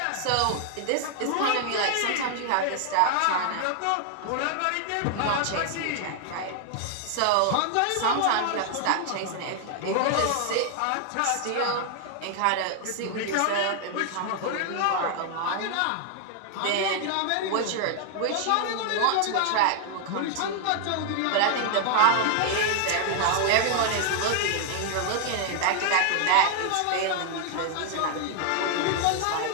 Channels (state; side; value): different; both; correlation 0.00